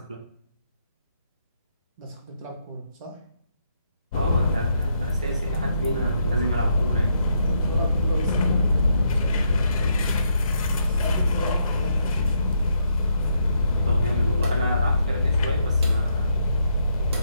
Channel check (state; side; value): inverted; both; correlation -0.77